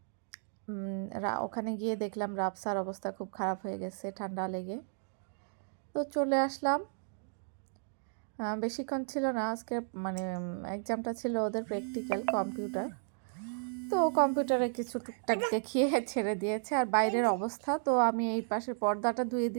ওখানে গিয়ে দেখলাম রাবসার অবস্থা খুব খারাপ হয়ে গেছে ঠান্ডা লেগে। তো চলে আসলাম। বেশিক্ষণ ছিল না, আজকে মানে এক্সামটা ছিল ওদের প্র্যাকটিক্যাল কম্পিউটার। তো কম্পিউটারে কিছু টুকটাক দেখিয়ে ছেড়ে দিয়েছে। আর বাইরের অবস্থা, তো আমি এই পাশের পর্দাটা ধুয়ে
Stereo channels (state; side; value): silent; left; digital silence